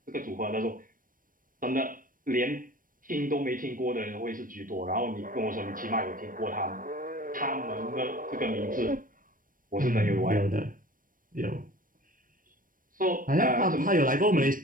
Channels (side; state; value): left; late; 0.40 ms